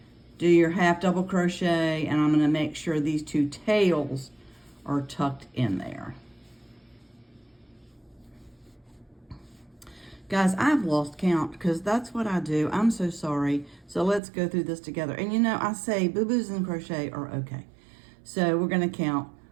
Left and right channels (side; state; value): left; drops out; at 14.2 s